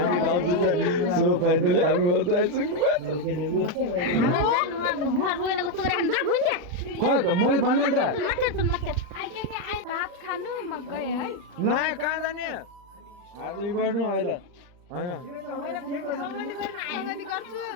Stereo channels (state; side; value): late; left; 40 ms